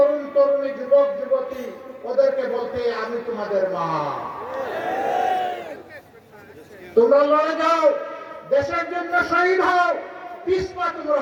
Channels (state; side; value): identical; both; correlation 1.00